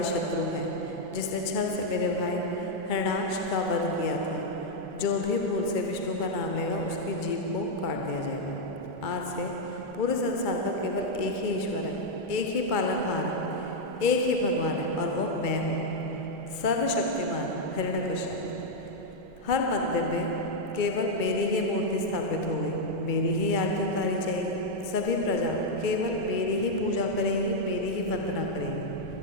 शत्रु है, जिसने छल से मेरे भाई हिरण्याक्ष का वध किया था। जो भी भूल से विष्णु का नाम लेगा उसकी जीभ को काट दिया जाएगा। आज से पूरे संसार का केवल एक ही ईश्वर है, एक ही पालनहार है, एक ही भगवान है और वह मैं हूँ, सर्वशक्तिमान हिरण्यकश्यप। हर मंदिर में केवल मेरी ही मूर्ति स्थापित होगी, मेरी ही आरती उतारी जाएगी। सभी प्रजा केवल मेरी ही पूजा करेगी, मेरी ही वंदना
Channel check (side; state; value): right; late; 2.2 ms